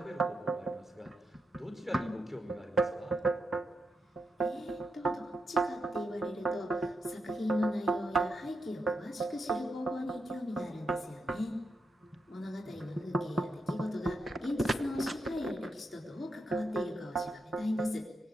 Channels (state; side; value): normal; both; correlation 0.84